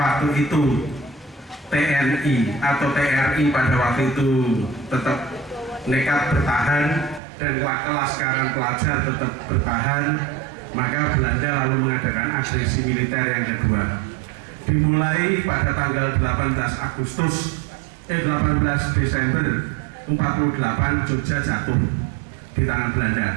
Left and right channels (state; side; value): drops out; left; at 7.2 s